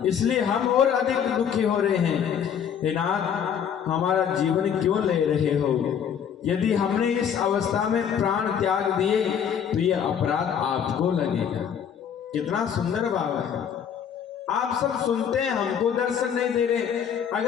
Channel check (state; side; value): quieter; right; 8.1 dB